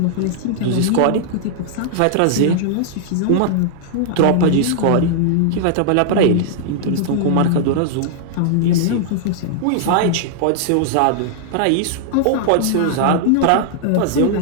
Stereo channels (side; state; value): both; different; correlation -0.01